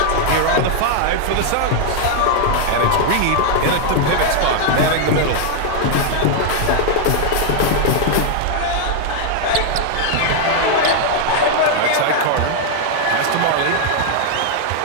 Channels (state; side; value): different; both; correlation 0.00